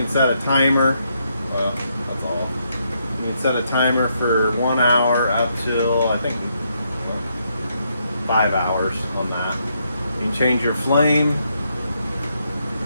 set a timer, that's all. You can set a timer for 1 hour up till, I think, 5 hours on that. You can change your flame.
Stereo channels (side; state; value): both; inverted; correlation -0.77